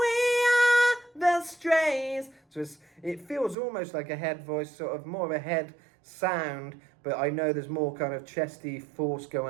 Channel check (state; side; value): drops out; left; at 3.6 s